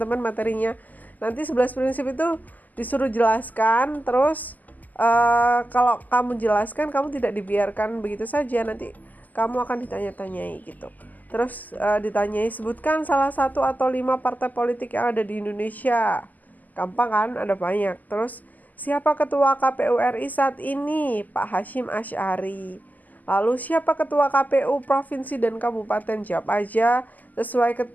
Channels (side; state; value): right; late; 0.082 ms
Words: materinya. Nanti 11 prinsip itu disuruh jelaskan. Terus kalau kamu jelaskan, kamu tidak dibiarkan begitu saja. Nanti kamu akan ditanya-tanyai gitu. Terus ditanyai, sebutkan salah satu atau 5 partai politik yang ada di Indonesia. Gampang kan, ada banyak. Terus siapa ketua KPU RI saat ini? Pak Hashim Asy'ari. Lalu siapa ketua KPU provinsi dan kabupaten? Jawab aja sesuai